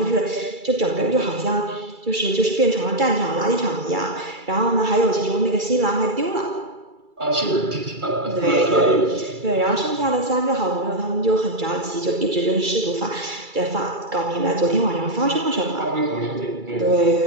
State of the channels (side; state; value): left; late; 2.3 ms